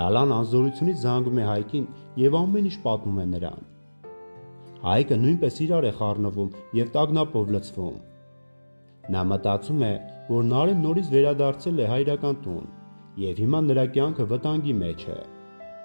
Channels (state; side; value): inverted; both; correlation -1.00